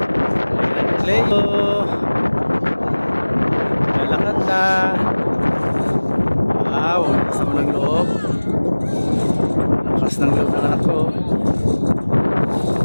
Play. Lakad na. Wow, lakas naman ng loob. Lakas ng loob ng anak ko.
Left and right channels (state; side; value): inverted; both; correlation -1.00